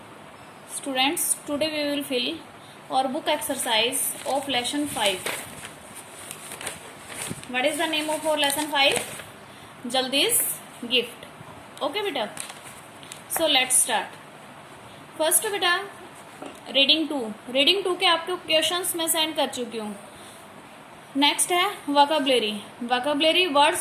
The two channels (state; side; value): identical; both; correlation 1.00